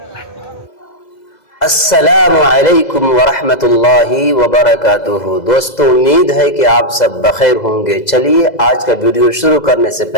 السلام علیکم ورحمۃ اللہ وبرکاتہ۔ دوستو، امید ہے کہ آپ سب بخیر ہوں گے۔ چلیے آج کا ویڈیو شروع کرنے سے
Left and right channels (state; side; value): late; right; 2.0 ms